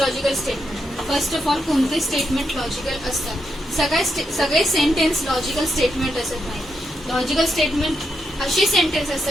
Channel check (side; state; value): both; normal; correlation 0.82